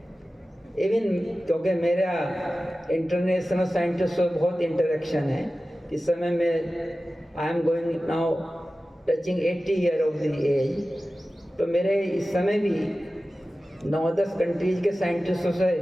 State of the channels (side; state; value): both; normal; correlation 0.95